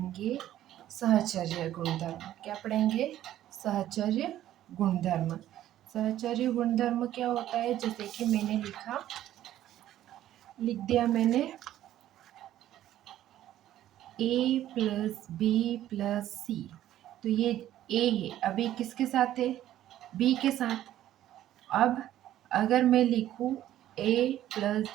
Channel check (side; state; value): left; quieter; 12.7 dB